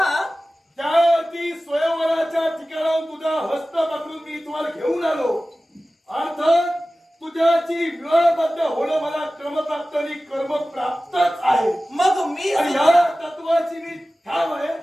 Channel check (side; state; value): both; normal; correlation 0.96